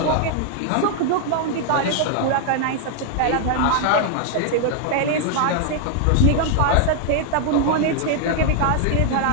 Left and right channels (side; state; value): both; different; correlation 0.00